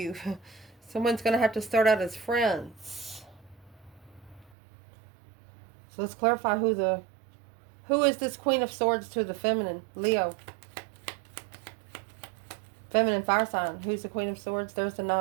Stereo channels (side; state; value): left; drops out; at 4.5 s